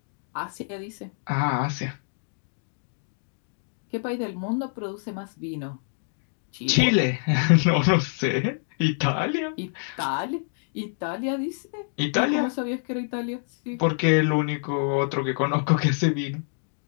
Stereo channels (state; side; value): silent; right; digital silence